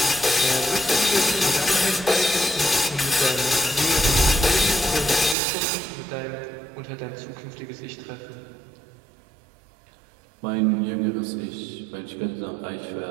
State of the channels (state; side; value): drops out; left; at 5.4 s